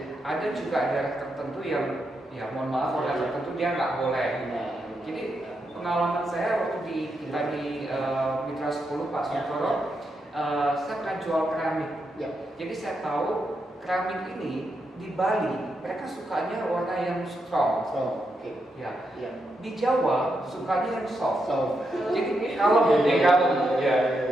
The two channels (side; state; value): both; normal; correlation 0.83